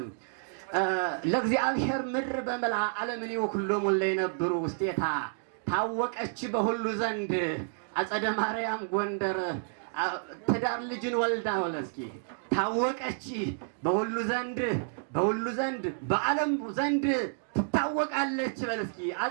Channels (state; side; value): silent; left; digital silence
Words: ለእግዚአብሔር ምድር በመላ ዓለምን ወኩሎሙ ለይነብሩ ውስቴታ ታወቀች በሁሉ ዘንድ አጸደ ማርያም ጎንደር ትዳር ልጅን ወልዳ ወለስኪ ታወቀች በሁሉ ዘንድ በዓለም ዘንድ ትታወቃለች በልስኪ